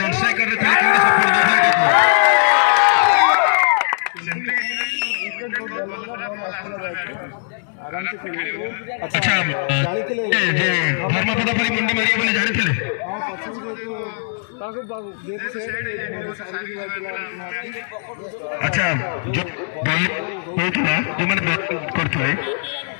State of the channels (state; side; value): silent; right; digital silence